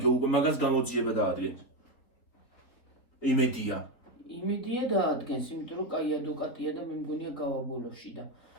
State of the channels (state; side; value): late; right; 3.9 ms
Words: უკვე მაგას გამოძიება დაადგენ. იმედია. იმედია დაადგენს, იმიტომ რომ კაი ადვოკატია და მე მგონია გავაბოლოში და